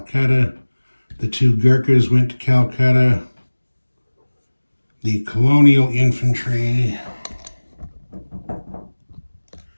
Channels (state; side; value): inverted; both; correlation -1.00